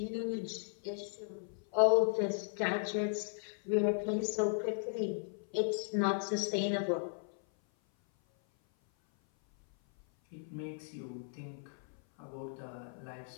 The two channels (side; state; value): right; silent; 54 dB below the other